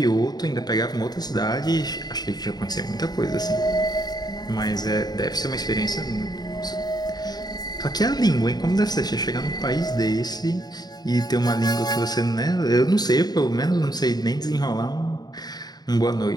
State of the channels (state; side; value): late; right; 0.20 ms